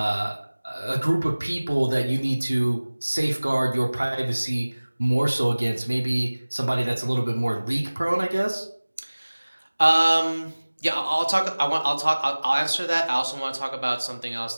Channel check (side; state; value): both; inverted; correlation -1.00